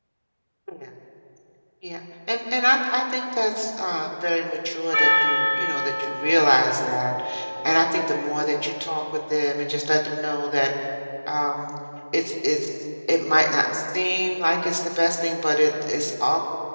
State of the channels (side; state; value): both; inverted; correlation -1.00